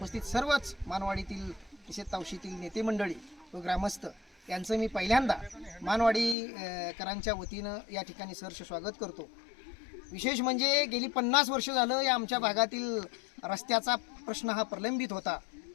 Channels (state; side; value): drops out; right; at 6.4 s